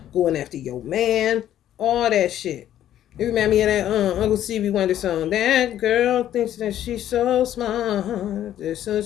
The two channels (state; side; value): quieter; right; 11.6 dB